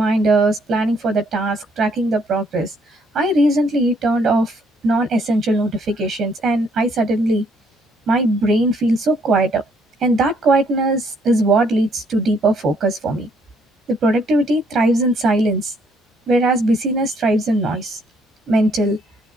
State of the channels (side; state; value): both; normal; correlation 0.67